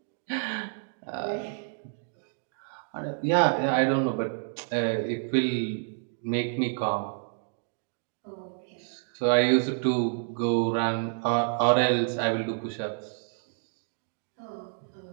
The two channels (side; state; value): left; silent; digital silence